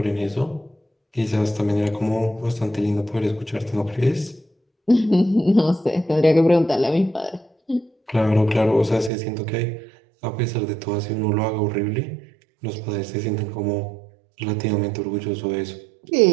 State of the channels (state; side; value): drops out; left; at 9.1 s